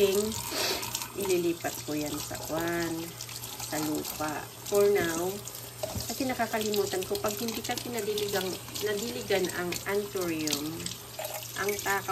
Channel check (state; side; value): identical; both; correlation 1.00